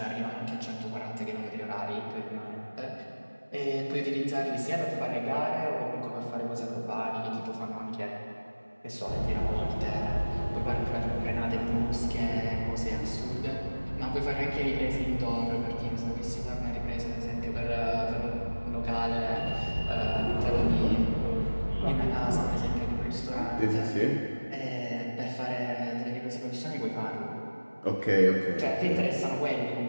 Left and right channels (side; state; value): both; inverted; correlation -1.00